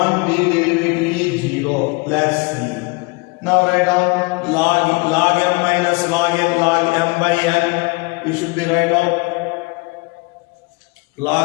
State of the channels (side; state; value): right; quieter; 28.1 dB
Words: b derivative is 0 plus c. Now write down log m minus log m by n. You should be write down